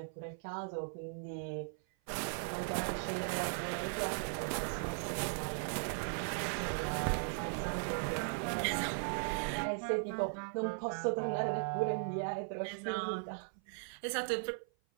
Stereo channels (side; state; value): left; silent; 52 dB below the other